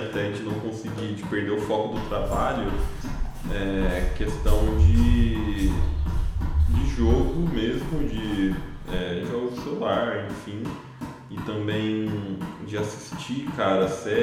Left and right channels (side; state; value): both; identical; correlation 1.00